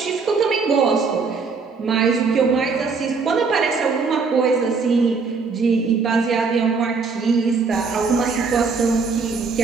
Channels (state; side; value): quieter; left; 4.8 dB